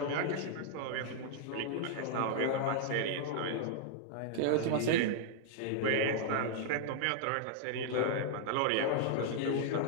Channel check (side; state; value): both; different; correlation -0.01